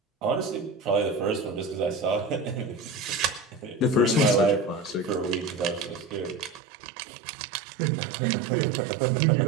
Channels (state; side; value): drops out; left; at 6.6 s